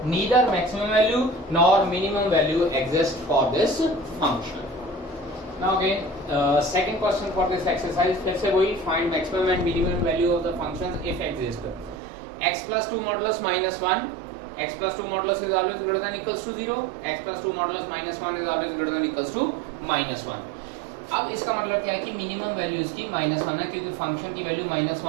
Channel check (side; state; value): left; drops out; at 12.0 s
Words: neither maximum value nor minimum value exists for this function. Now again, second question for this exercise, फिर से वही find maximum and minimum value of the functions if exist. X plus 2 modulus minus 1, x plus 2 modulus is always greater than equals to 0, x plus 2 modulus minus 1 is always greater than equals to minus 1। अब इसका मतलब क्या है कि मिनिमम वैल्यू इसकी -1 है, क्योंकि फंक्शन की वैल्यू